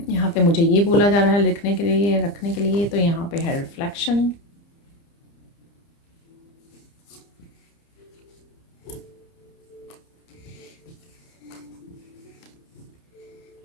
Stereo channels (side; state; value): right; late; 30 ms